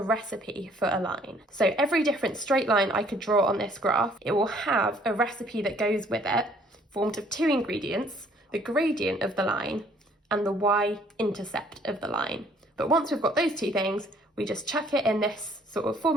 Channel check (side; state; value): both; normal; correlation 0.61